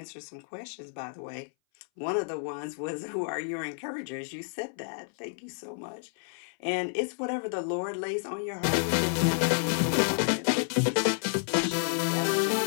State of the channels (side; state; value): right; silent; 58 dB below the other